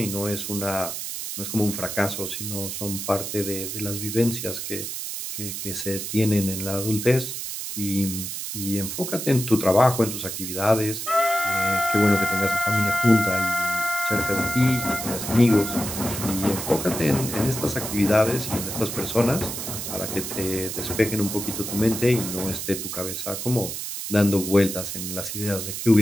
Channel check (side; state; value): right; noise; hiss, 6 dB below the sound